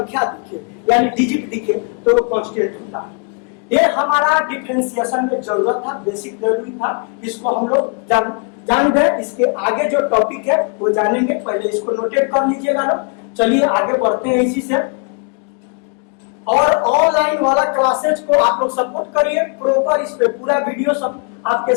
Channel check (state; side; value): quieter; right; 38.5 dB